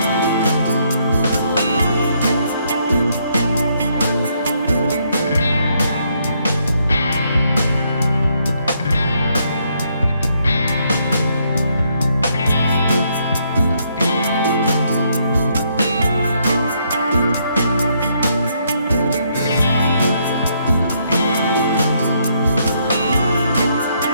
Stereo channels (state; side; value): inverted; both; correlation -0.73